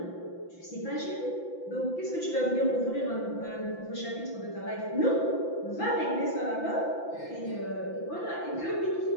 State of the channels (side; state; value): right; late; 5.9 ms